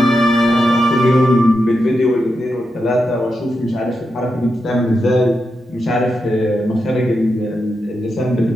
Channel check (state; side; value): normal; both; correlation 0.87